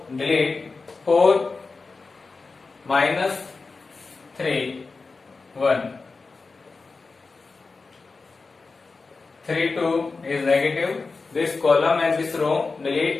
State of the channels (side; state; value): right; quieter; 4.1 dB